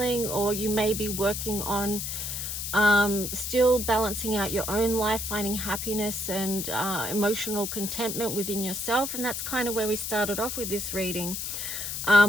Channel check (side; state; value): left; noise; hiss, 4 dB below the sound